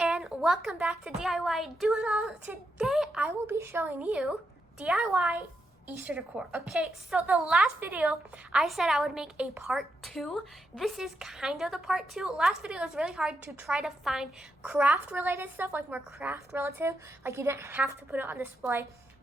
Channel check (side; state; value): both; normal; correlation 0.83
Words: welcome back to DIY Do It All. Today I will be showing you DIY Easter decor. Okay, so the last video I said I would make a part 2. This is kind of the part 2. Last video was really hard to try to find craft related stuff, like more craft relative, like you didn't have to put it on display.